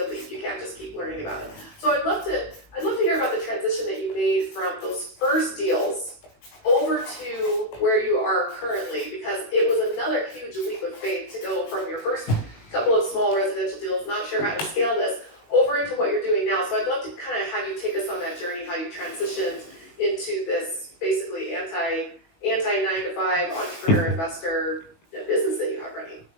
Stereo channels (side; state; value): right; late; 18 ms